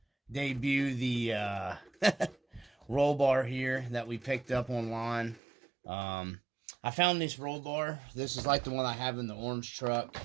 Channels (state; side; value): drops out; left; at 5.4 s